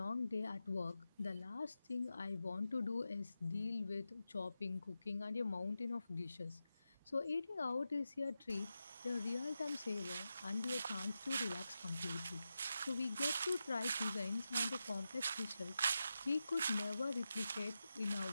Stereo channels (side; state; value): both; inverted; correlation -0.90